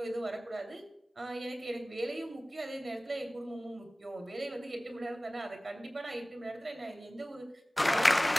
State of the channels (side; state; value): both; normal; correlation 0.98